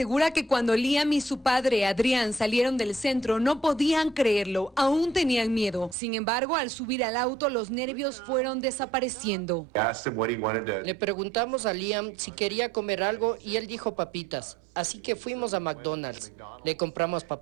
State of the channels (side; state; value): left; drops out; at 6.0 s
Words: que cuando Liam y su padre Adrián salieron del centro no podían creerlo, aún tenían miedo. Sin embargo, al subir al auto los nervios fueron desapareciendo. Le preguntamos a Liam si quería comer algo y él dijo papitas. Así que fuimos a McDonald's. Le compramos